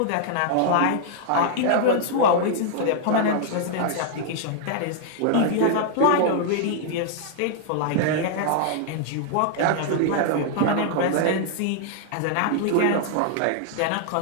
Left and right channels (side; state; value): both; different; correlation -0.01